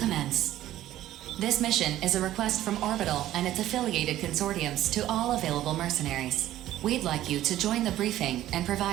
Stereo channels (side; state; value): left; quieter; 13.6 dB